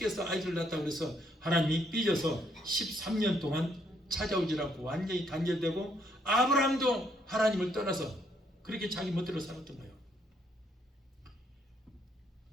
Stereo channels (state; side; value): normal; both; correlation 0.71